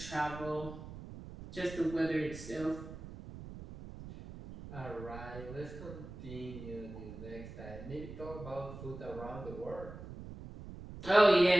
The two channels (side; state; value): right; noise; rumble, 12 dB below the sound